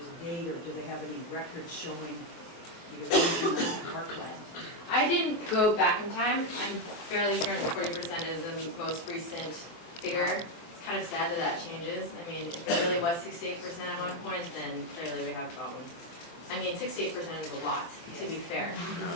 a date, or do they have any records showing the erosion of parkland? I didn't go back in time. I'm fairly certain 40% is the most recent figure. It's kind of sad that that changes. I mean, if it really was 68% at one point, then clearly we have problems. I mean, 68% is a lot, to be fair.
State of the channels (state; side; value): late; right; 24 ms